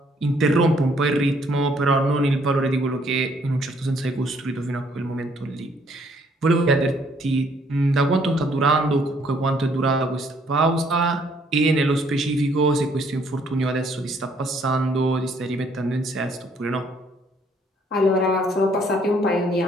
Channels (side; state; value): both; normal; correlation 0.65